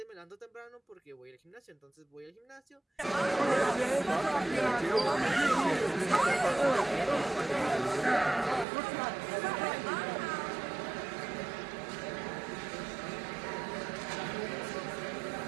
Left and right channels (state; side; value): drops out; left; at 8.7 s